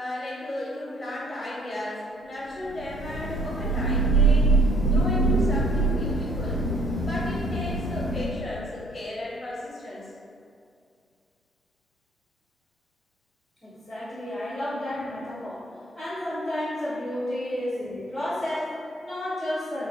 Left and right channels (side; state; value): both; normal; correlation 0.61